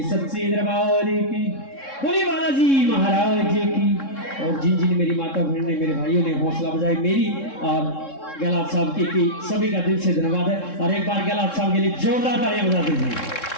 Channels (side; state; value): right; late; 3.7 ms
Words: सच्चे दरबार की बोली बालाजी महाराज जी की। और जिन जिन मेरी माता बहन ने मेरे भाइयों ने हौसला बजाई मेरी और गहलात साहब की सभी का दिल से धन्यवाद है। और एक बार गहलात साहब के लिए जोरदार तालियां बजा दीजिए।